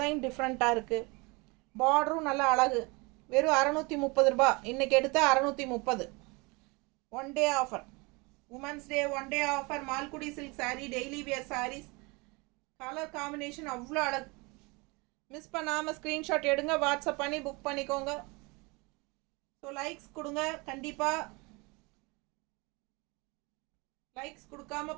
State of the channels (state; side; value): quieter; left; 27.2 dB